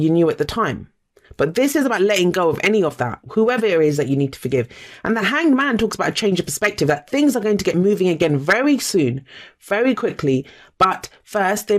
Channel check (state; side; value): identical; both; correlation 1.00